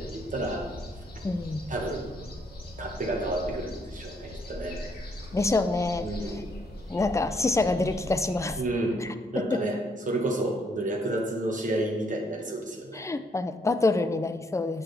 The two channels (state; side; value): normal; both; correlation 0.71